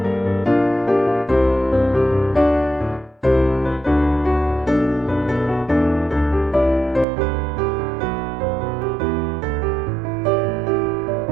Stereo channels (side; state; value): left; drops out; at 7.1 s